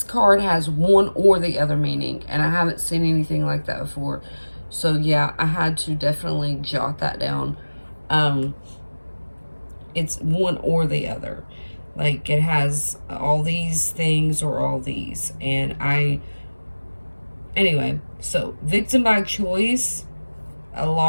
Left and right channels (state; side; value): inverted; both; correlation -1.00